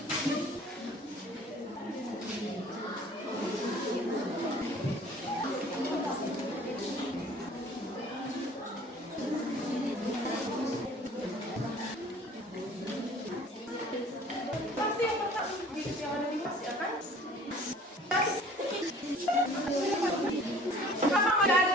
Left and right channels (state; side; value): normal; both; correlation 0.50